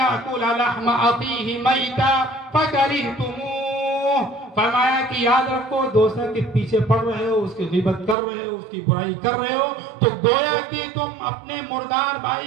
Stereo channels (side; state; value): left; drops out; at 8.2 s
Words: لحم اخیہ میتا فکرہتموہ، فرمایا کہ یاد رکھو دوسرے کے پیچھے پڑ رہے ہو، اس کی غیبت کر رہے ہو، اس کی برائی کر رہے ہو تو گویا کہ تم اپنے مردار